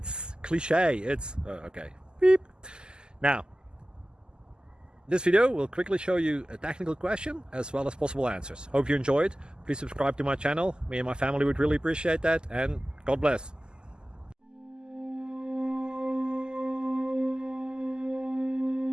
cliche. It's okay. Beep. Now, this video will quickly show you a technical question as well as possible answers. Hope you enjoyed. Please subscribe to my channel. Me and my family would really appreciate that, and God bless.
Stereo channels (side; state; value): left; late; 0.046 ms